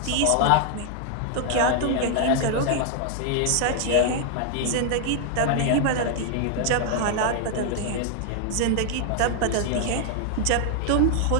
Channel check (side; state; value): both; different; correlation 0.00